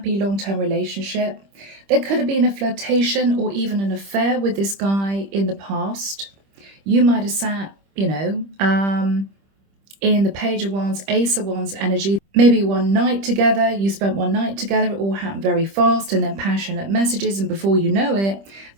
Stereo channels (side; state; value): left; late; 25 ms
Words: long-term relationship. There could have been a flirtation or even an affair with this guy in the past. You might have sat, you know, in the Page of Wands, Ace of Wands energy. Maybe one night together, you spent one night together, it all happened very fast, and then passionate messages, and before you know it,